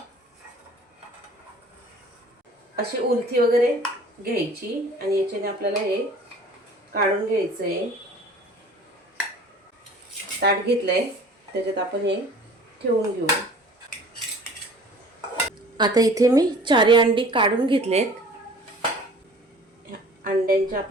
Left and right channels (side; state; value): both; normal; correlation 0.47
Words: अशी उलथी वगैरे घ्यायची आणि याच्याने आपल्याला हे काढून घ्यायचंय। ताट घेतलंय, त्याच्यात आपण हे ठेवून घेऊ. आता इथे मी 4 अंडी काढून घेतलेत. अंड्यांचे